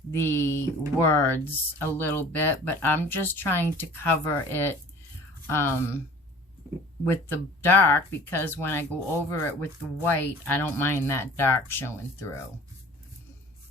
the words a little bit, but I'm just trying to cover it with the dark, because when I go over it with the white, I don't mind that dark showing through.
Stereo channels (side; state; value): both; normal; correlation 0.46